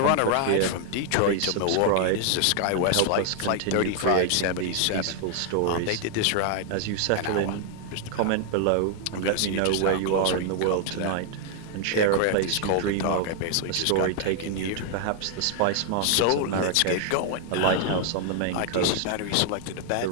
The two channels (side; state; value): both; different; correlation 0.00